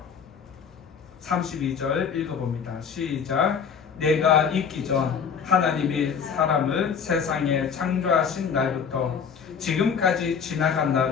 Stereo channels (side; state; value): right; quieter; 6.7 dB